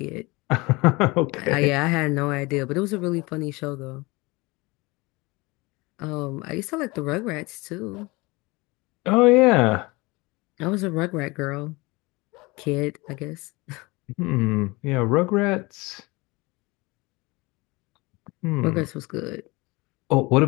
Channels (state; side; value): quieter; right; 24.1 dB